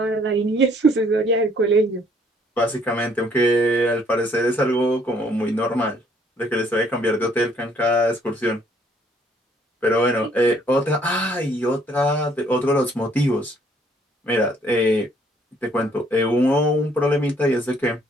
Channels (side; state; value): both; normal; correlation 0.64